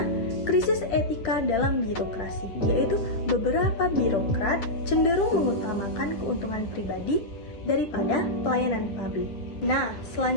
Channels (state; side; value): late; right; 9.7 ms